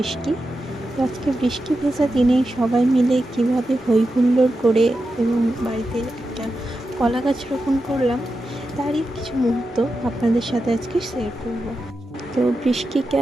আজকে বৃষ্টি ভেজা দিনে সবাই মিলে কীভাবে হই হুল্লোড় করে এবং বাড়িতে একটা কলা গাছ রোপণ করলাম, তারই কিছু মুহূর্ত আপনাদের সাথে আজকে শেয়ার করব। তো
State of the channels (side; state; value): both; normal; correlation 0.90